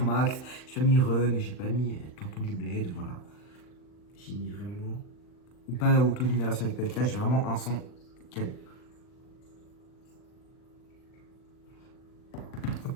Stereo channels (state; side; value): late; right; 39 ms